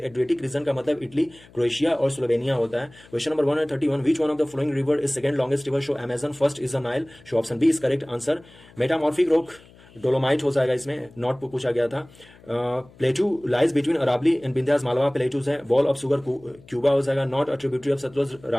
रीजन का मतलब इटली, क्रोएशिया और स्लोवेनिया होता है। Question number 131, which one of the following river is second longest river? So Amazon, first is the Nile. So option B is correct answer. Metamorphic rock dolomite हो जाएगा, इसमें नॉट पूछा गया था। Plateau lies between Aravalli and Vindhyas, Malwa plateaus है। वॉल ऑफ शुगर क्यूबा हो जाएगा। Not a tributary of Sutlej,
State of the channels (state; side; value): noise; left; hum, 25 dB below the sound